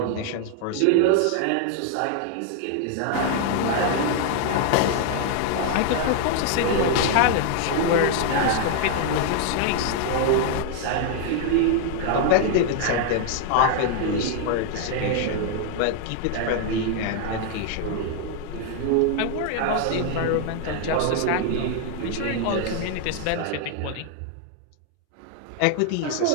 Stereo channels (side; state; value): both; different; correlation 0.00